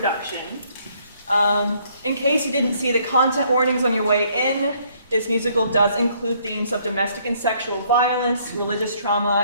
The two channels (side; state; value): both; inverted; correlation -0.66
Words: In case you didn't see the content warnings on your way in, this musical does include themes of domestic and sexual violence, religious